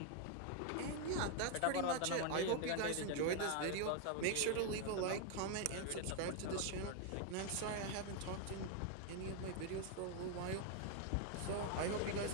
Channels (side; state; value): both; different; correlation 0.01